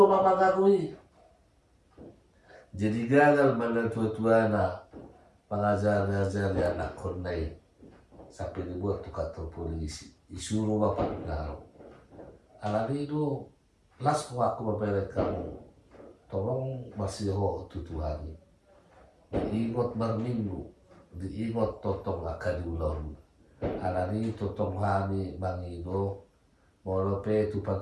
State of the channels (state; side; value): identical; both; correlation 1.00